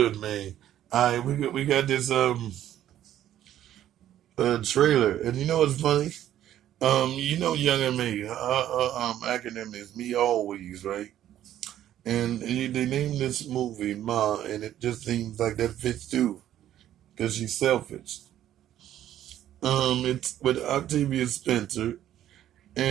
man? All right, we got this trailer, and you know what's funny? Young and me, acronym is me always, right? And they named this movie Ma, and it just seems like that fits too, because she's selfish. It's with Octavia Spencer,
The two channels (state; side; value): quieter; left; 11.9 dB